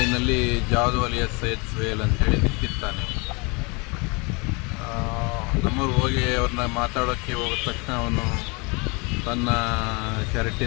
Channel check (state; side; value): quieter; right; 29.5 dB